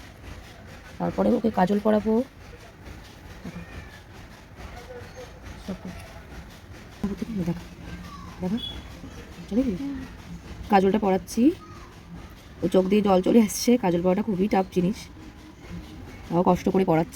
তারপরে ওকে কাজল পরাবো। কাজলটা পরাচ্ছি, ও চোখ দিয়ে জল চলে আসছে। কাজল পরাটা খুবই টাফ জিনিস, তাও কষ্ট করে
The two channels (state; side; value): identical; both; correlation 1.00